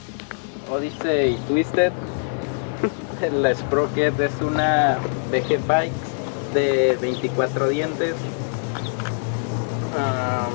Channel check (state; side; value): silent; right; digital silence